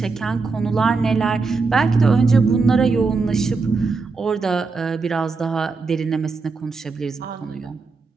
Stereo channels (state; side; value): quieter; left; 4.3 dB